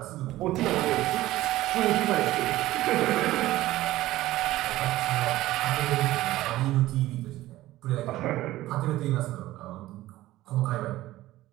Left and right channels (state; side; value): quieter; left; 16.1 dB